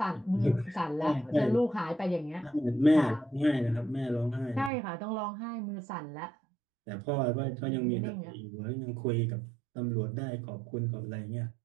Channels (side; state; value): left; drops out; at 4.7 s